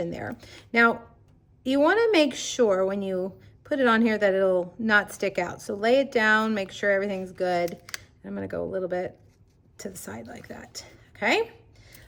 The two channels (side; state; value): both; identical; correlation 1.00